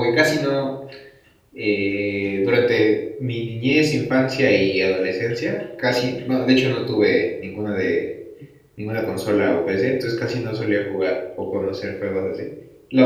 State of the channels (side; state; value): both; identical; correlation 1.00